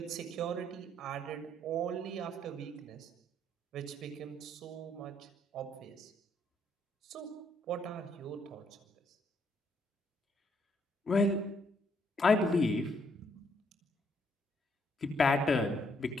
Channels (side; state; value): both; normal; correlation 0.71